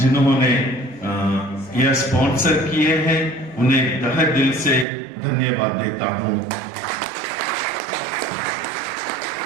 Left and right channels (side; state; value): left; drops out; at 4.9 s